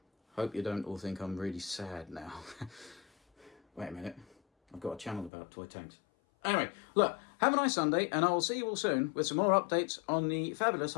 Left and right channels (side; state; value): right; drops out; at 5.3 s